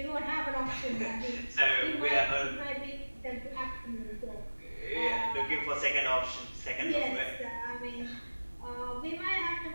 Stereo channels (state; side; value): inverted; both; correlation -1.00